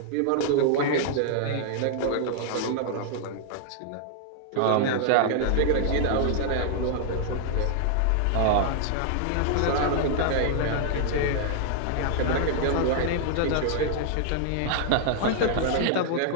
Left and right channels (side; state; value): both; different; correlation 0.00